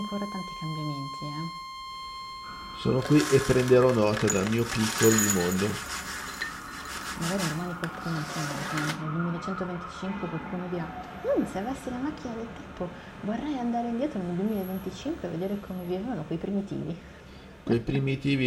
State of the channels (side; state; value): both; identical; correlation 1.00